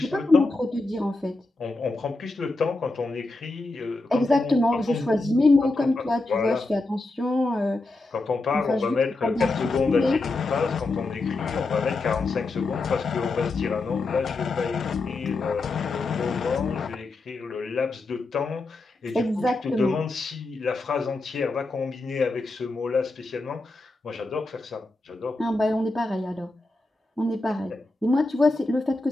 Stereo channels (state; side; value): quieter; right; 3.1 dB